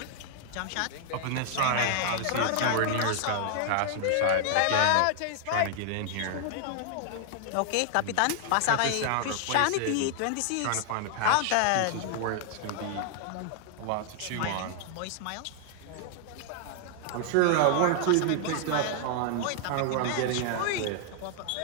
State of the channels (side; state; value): both; different; correlation 0.00